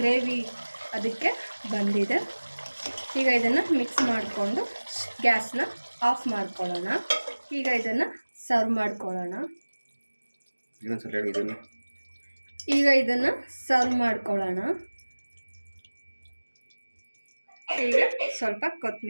ಅದಕ್ಕೆ ಬಂದಿದೆ. ಈಗ ಇದನ್ನು ಮಿಕ್ಸ್ ಮಾಡಿಕೊಂಡು ಗ್ಯಾಸ್ನ ಆಫ್ ಮಾಡ್ಕೊಳ್ಳೋಣ. ಈಗ ಇದನ್ನು ಸರ್ವ್ ಮಾಡ್ಕೊಳ್ಳೋಣ. ಈಗ ಇದನ್ನು ಸರ್ವ್ ಮಾಡ್ಕೊಳ್ಳೋಣ. ಈಗ ಸ್ವಲ್ಪ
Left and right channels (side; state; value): both; inverted; correlation -1.00